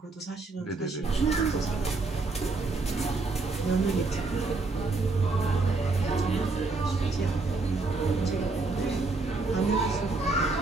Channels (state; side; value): quieter; left; 3.6 dB